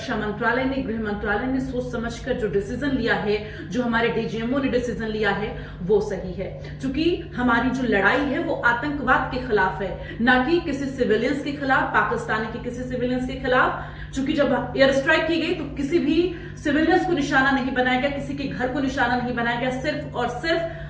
मंत्रालय ने, गृह मंत्रालय ने सोच समझकर जो डिसीजन लिया है, जो हमारे डीजीएमओ ने डिसीजन लिया है, वो सही है। क्योंकि हमारी जो लड़ाई है वो आतंकवाद के खिलाफ है, ना कि किसी सिविलियंस के खिलाफ, पाकिस्तानी के किसी सिविलियंस के खिलाफ। क्योंकि जब एयर स्ट्राइक की गई तो किसी भी सिविलियंस को निशाना नहीं बनाया गया, किसी के घर को निशाना नहीं बनाया गया, सिर्फ और सिर्फ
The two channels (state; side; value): identical; both; correlation 1.00